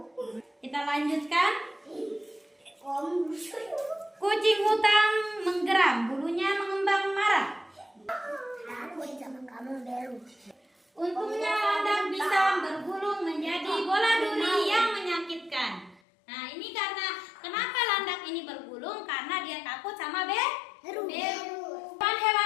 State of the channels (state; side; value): drops out; right; at 16.0 s